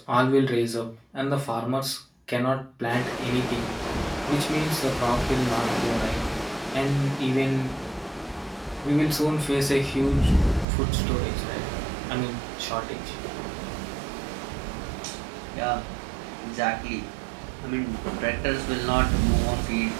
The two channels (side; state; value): left; drops out; at 10.7 s